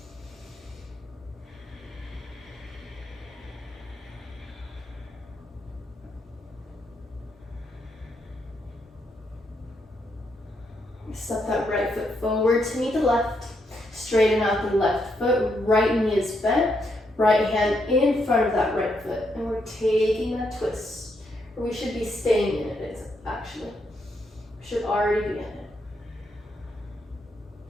Step that right foot forward to meet the left. Straighten out the left foot, right knee is bent, right hand in front of that right foot. And we're taking that twist. Or we should be staying in it, actually. We should already be in it.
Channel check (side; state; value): both; normal; correlation 0.78